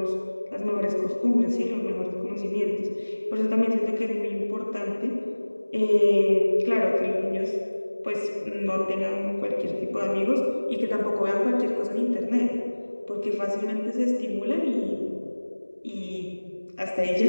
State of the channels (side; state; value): both; inverted; correlation -1.00